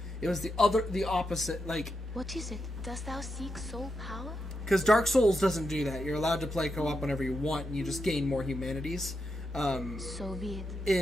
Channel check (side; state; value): both; normal; correlation 0.85